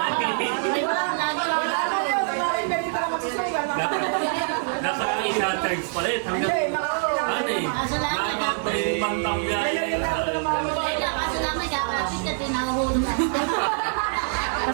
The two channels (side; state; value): left; silent; 62 dB below the other